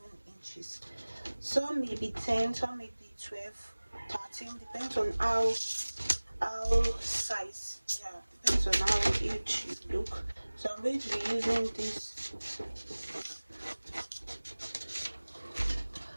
inches. Some may be 10, some may be 12, 13, depends on how size, depends on how huge you look. So I'm going to be using this.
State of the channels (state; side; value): inverted; both; correlation -1.00